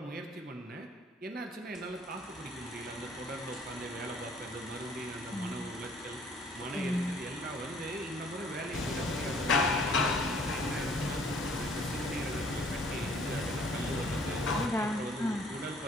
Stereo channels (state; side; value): normal; both; correlation 0.58